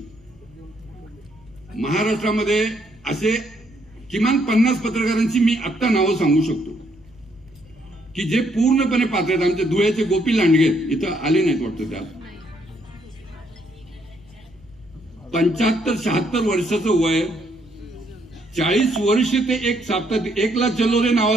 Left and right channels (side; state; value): right; noise; hum, 29 dB below the sound